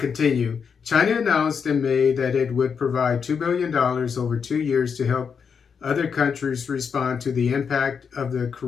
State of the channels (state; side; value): quieter; right; 6.4 dB